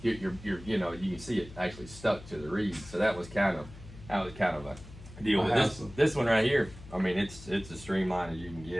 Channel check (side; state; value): left; noise; hum, 17 dB below the sound